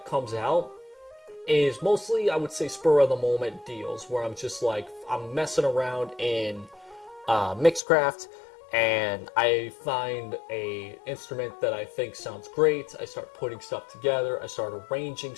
comes out is mostly, I would say, spur of the moment deals where I'm just like, I'm messing around in Mixcraft and I find a instrument that I think sounds great. I start putting stuff together. I start arranging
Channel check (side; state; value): right; drops out; at 7.8 s